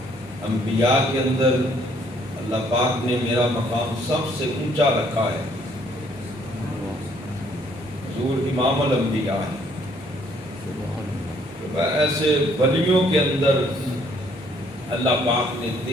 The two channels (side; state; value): both; normal; correlation 0.64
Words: انبیاء کے اندر اللہ پاک نے میرا مقام سب سے اونچا رکھا ہے، حضور امام الانبیاء ہے، ایسے ولیوں کے اندر اللہ پاک نے